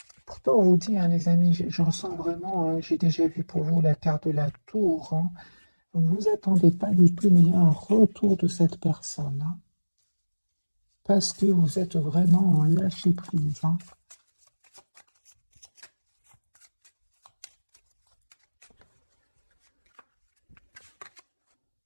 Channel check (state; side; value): inverted; both; correlation -1.00